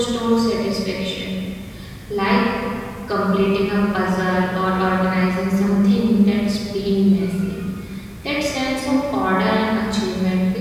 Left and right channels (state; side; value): identical; both; correlation 1.00